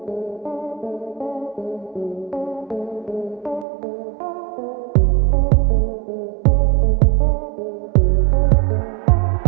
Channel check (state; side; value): drops out; left; at 3.7 s